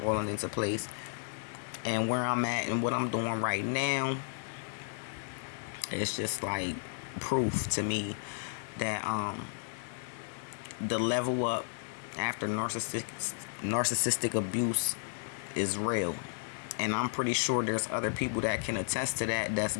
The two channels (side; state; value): right; silent; digital silence